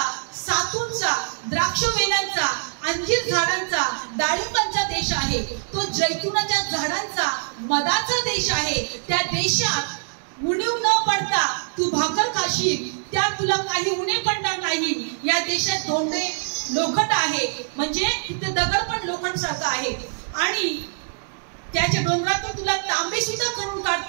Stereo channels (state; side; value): silent; left; digital silence